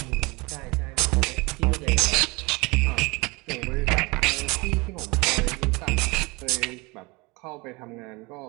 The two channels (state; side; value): quieter; left; 25.9 dB